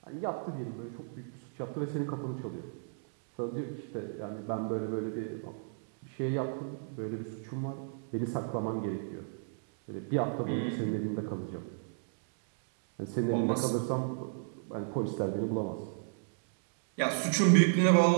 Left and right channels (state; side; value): silent; left; digital silence